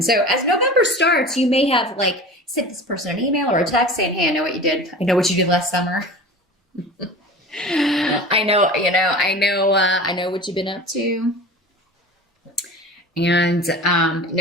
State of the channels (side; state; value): both; normal; correlation 0.36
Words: So as November starts, you may have sent this person an email or a text saying, "Hey, I know what you did. I know what you did last summer. I know what you've been up to." And